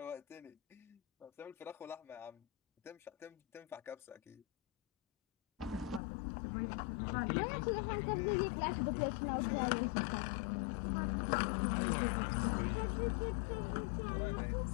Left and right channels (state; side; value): drops out; right; at 6.0 s